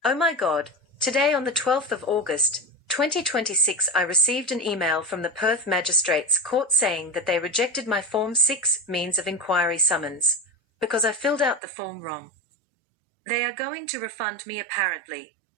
Oh my God, today on the 12th of August, 2026 I received an email from the Perth Magistrates Court saying that they rejected my Form 6 means of inquiry summons, because I filled out the form wrong. They are going to refund me apparently.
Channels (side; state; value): left; drops out; at 11.6 s